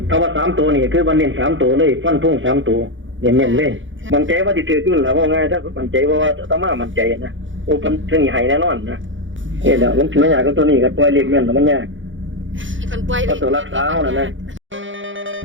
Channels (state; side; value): late; left; 0.56 ms